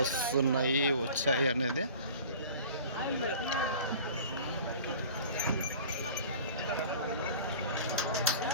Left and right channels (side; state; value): both; inverted; correlation -0.43